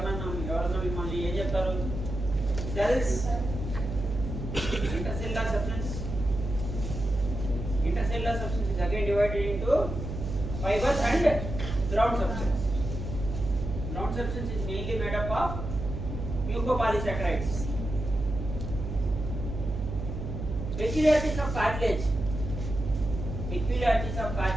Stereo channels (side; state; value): right; noise; hum, 5 dB below the sound